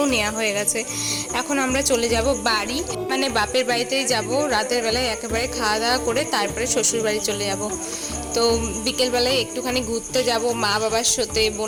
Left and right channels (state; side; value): identical; both; correlation 1.00